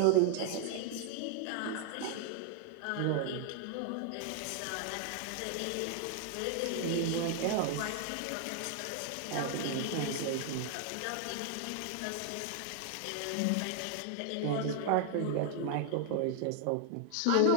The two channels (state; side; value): different; both; correlation 0.00